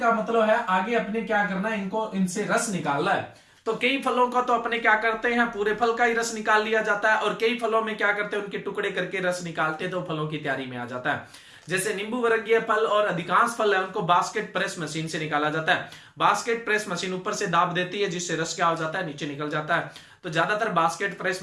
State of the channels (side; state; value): both; identical; correlation 1.00